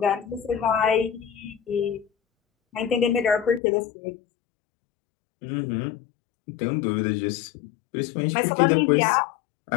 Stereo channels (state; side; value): drops out; right; at 3.6 s